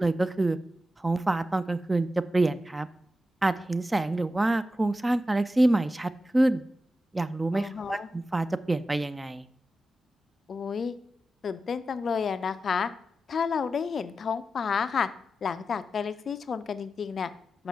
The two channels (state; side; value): normal; both; correlation 0.91